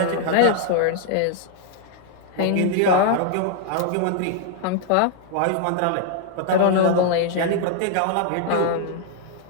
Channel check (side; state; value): both; different; correlation 0.00